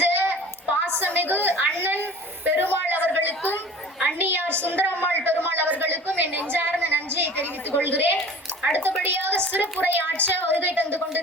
பாசமிகு அண்ணன் பெருமாள் அவர்களுக்கும் அண்ணியார் சுந்தரம்மாள் பெருமாள் அவர்களுக்கும் என் நெஞ்சார்ந்த நன்றியை தெரிவித்துக் கொள்கிறேன். அடுத்தபடியாக சிறப்புரை ஆற்ற வருகை தந்து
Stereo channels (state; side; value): normal; both; correlation 0.42